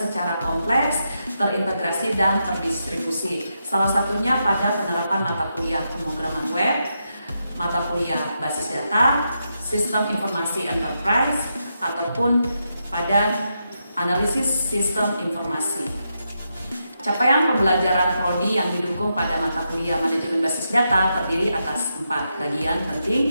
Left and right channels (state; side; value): inverted; both; correlation -0.84